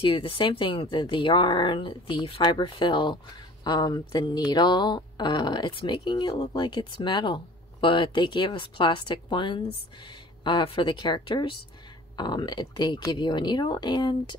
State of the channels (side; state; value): both; normal; correlation 0.47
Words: you the same thing: the yarn, the fiber fill, the needle. It's making it look like it's metal, but they gave us plastic ones for the characters. They give you a needle, and